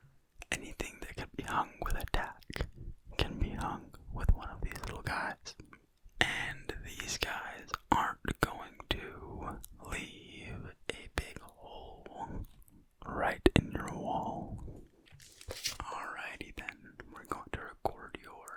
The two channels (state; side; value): identical; both; correlation 1.00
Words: Anything that can be hung with a tack can be hung with one of these little guys. And these guys aren't going to leave a big hole right in your wall. Alrighty then, we're going to record